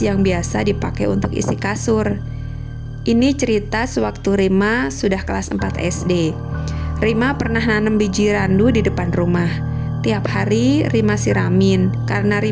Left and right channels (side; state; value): both; identical; correlation 1.00